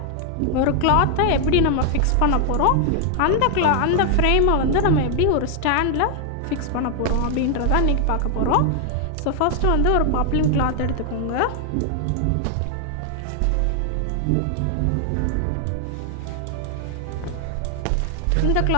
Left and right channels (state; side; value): different; both; correlation 0.00